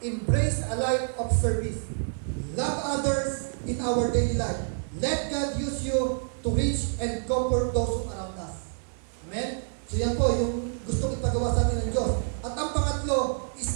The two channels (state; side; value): silent; left; digital silence